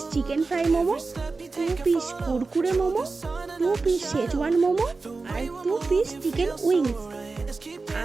chicken fry momo, 2 piece kurkure momo, 2 piece Schezwan momo আর 2 পিস চিকেন উইংস।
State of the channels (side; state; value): left; quieter; 3.9 dB